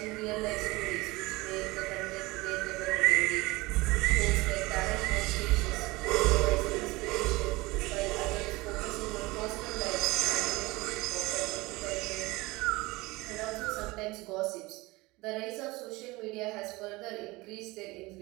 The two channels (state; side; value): quieter; left; 22.0 dB